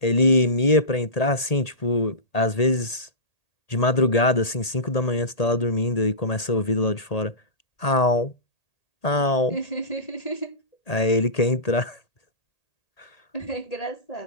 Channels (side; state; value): right; late; 1.8 ms